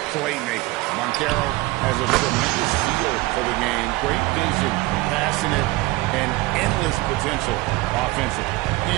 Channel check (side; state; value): left; quieter; 20.3 dB